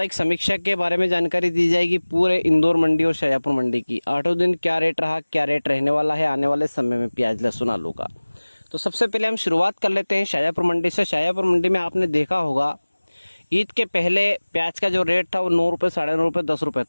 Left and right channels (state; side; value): inverted; both; correlation -1.00